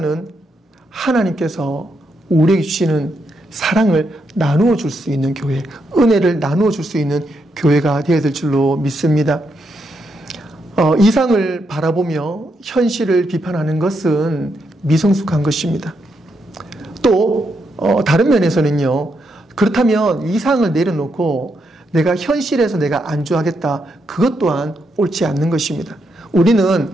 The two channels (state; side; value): normal; both; correlation 0.80